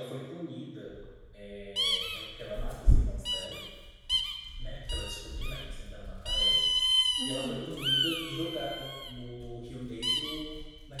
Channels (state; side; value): identical; both; correlation 1.00